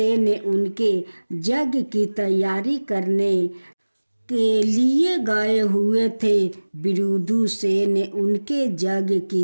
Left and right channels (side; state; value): both; inverted; correlation -1.00